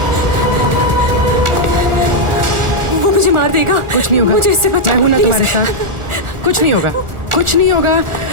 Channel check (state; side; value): late; left; 1.4 ms